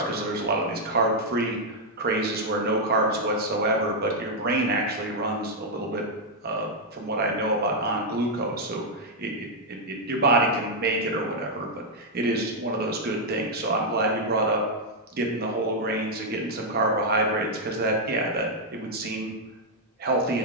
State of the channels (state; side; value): normal; both; correlation -0.02